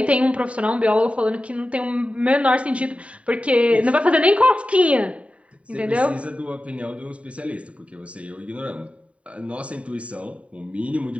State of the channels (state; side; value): late; left; 0.064 ms